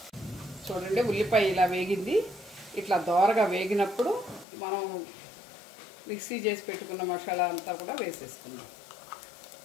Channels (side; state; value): right; drops out; at 4.5 s